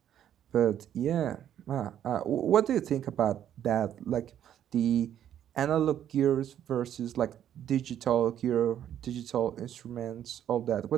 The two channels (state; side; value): quieter; left; 10.4 dB